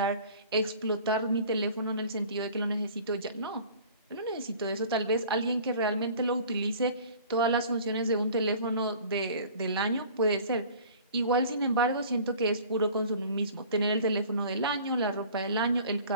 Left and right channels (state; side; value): inverted; both; correlation -0.46